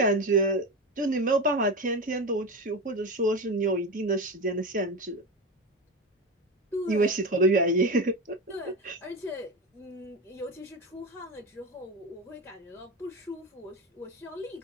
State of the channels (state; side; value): normal; both; correlation 0.21